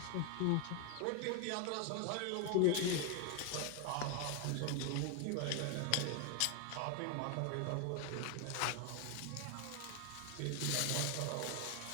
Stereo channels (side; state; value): both; different; correlation 0.00